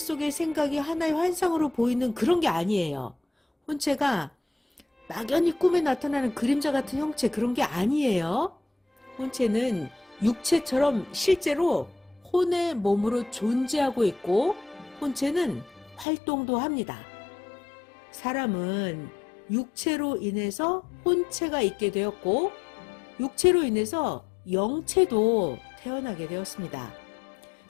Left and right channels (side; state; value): right; drops out; at 16.1 s